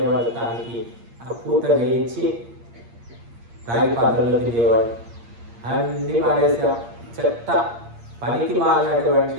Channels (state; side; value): late; left; 8.6 ms